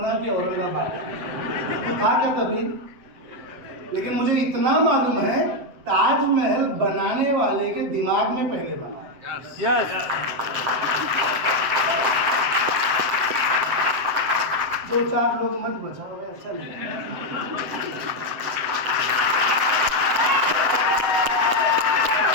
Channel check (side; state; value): left; late; 7.7 ms